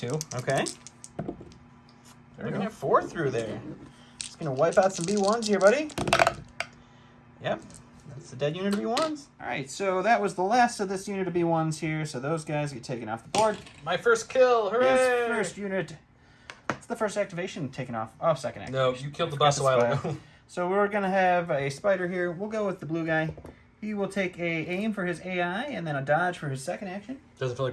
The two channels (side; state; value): both; identical; correlation 1.00